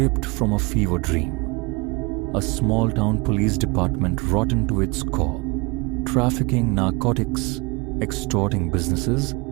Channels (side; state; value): left; quieter; 27.3 dB